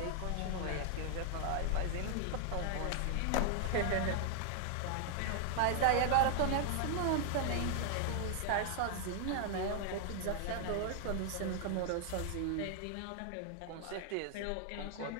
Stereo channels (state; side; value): different; both; correlation 0.00